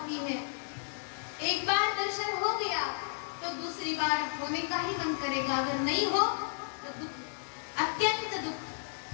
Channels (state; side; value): silent; right; digital silence